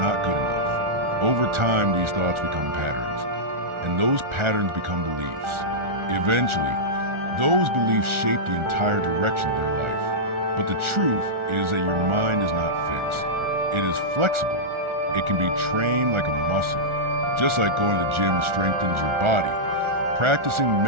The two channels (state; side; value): late; left; 1.4 ms